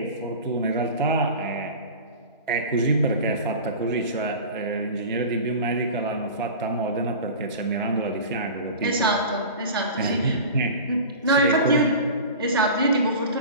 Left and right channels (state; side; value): inverted; both; correlation -0.34